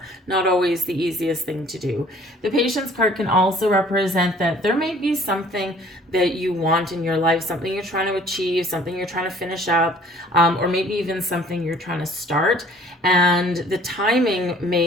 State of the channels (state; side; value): normal; both; correlation 0.54